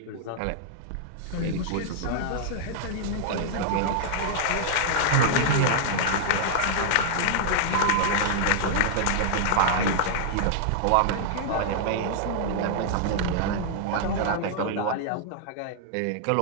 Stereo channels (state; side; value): different; both; correlation -0.01